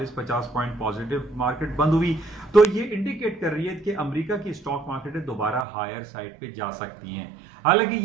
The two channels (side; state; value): left; drops out; at 5.7 s